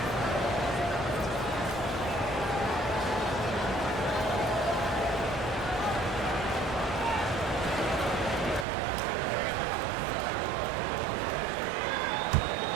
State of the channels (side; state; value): left; drops out; at 8.7 s